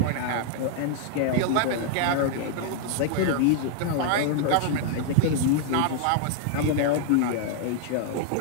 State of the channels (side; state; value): both; different; correlation -0.01